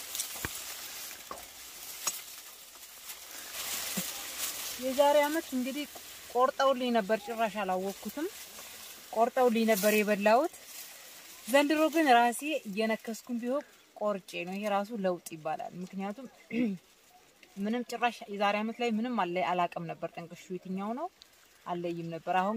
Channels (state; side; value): identical; both; correlation 1.00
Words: የዛሬ አመት እንግዲህ ቆርጠውልኝ ነበር ጭራሽ አላወቅኩትም ቆርጠውልኝ ነበር የበላውት ዘንድሮ ግን ራሴ እየነከስኩኝ ቢሆን ቆርጬ ነው ይሄ ራሱ ለውጥ ይባላል ምክንያቱም ምንም ጭራሽ የዛሬ አመት ላይ ምንም አላቀም ነበር ጠንቅሹ የትኛው ነው አለይም ነበር